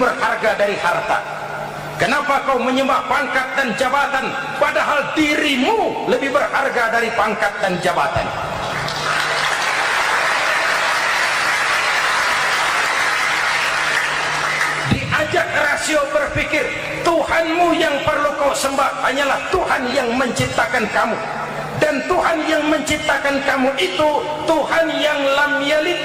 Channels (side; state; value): both; identical; correlation 1.00